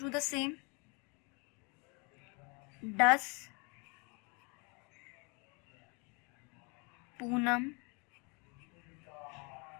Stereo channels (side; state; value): right; quieter; 31.9 dB